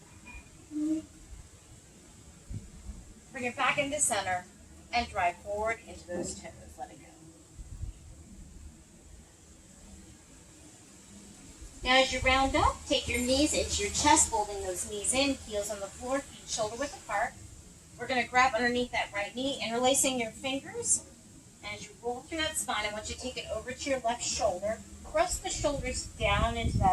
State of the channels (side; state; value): both; identical; correlation 1.00